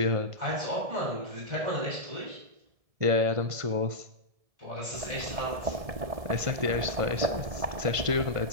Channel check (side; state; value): left; late; 1.7 ms